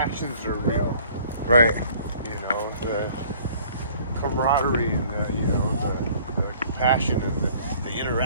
are real. Right. You know, the camaraderie and the compassion and the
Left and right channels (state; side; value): inverted; both; correlation -0.54